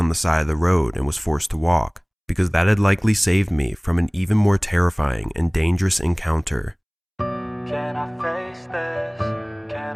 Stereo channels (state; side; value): identical; both; correlation 1.00